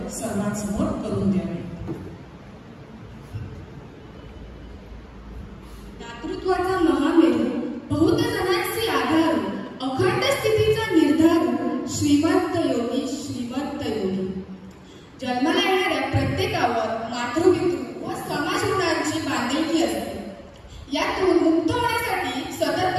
सर्वांसमोर करून द्यावी. दातृत्वाचा महामेरू, बहुत जणांची आधार, अखंड स्थितीचा निर्धार, श्रीमंत योगी श्रीमंत योगी. जन्माला येणाऱ्या प्रत्येकावर मातृपितृ व समाज ऋणांची बांधिलकी असते. यातून मुक्त होण्यासाठी सतत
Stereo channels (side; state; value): both; identical; correlation 1.00